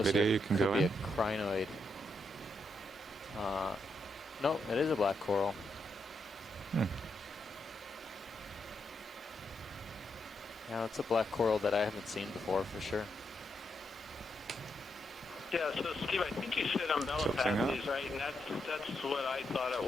video, you it can could go be in. a crinoid. No, it is a black coral. Yeah, it's a black coral that I haven't seen before for sure. Yeah, so Steve, I think you said umbellapathes, right? And that's what I thought it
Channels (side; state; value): both; normal; correlation 0.81